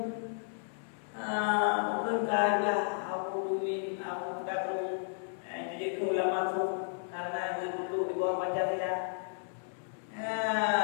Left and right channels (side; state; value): right; silent; 56 dB below the other